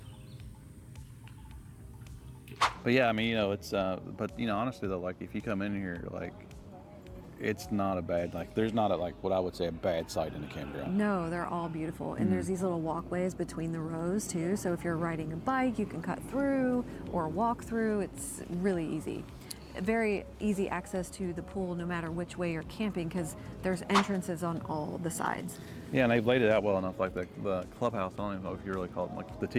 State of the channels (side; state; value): both; identical; correlation 1.00